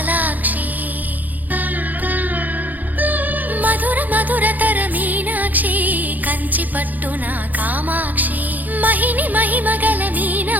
మధుర మధురతర మీనాక్షి కంచి పట్టున కామాక్షి మహిని మహిమగల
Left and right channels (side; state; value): left; late; 0.082 ms